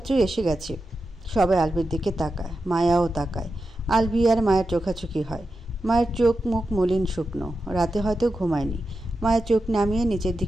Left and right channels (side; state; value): both; normal; correlation 0.90